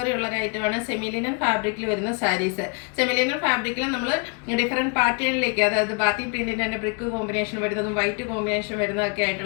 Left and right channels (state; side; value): quieter; right; 35.4 dB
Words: ഉള്ള ഒരു ഐറ്റമാണ് സെമിലിനൻ ഫാബ്രിക്കിൽ വരുന്ന സാരീസ്. സെമിലിനൻ ഫാബ്രിക്കിൽ നമ്മൾ ഡിഫറെന്റ് പാറ്റേണിലേക്ക്, അതായത് ബാത്തി പ്രിന്റിന്റെ തന്നെ ബ്രിക്ക് കോമ്പിനേഷൻ വരുന്നതും വൈറ്റ് കോമ്പിനേഷൻ വരുന്നതൊക്കെ